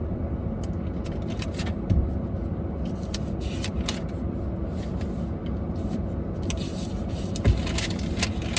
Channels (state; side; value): identical; both; correlation 1.00